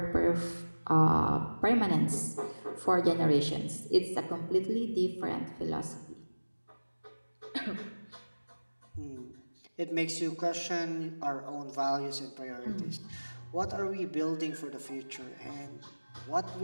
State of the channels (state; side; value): inverted; both; correlation -1.00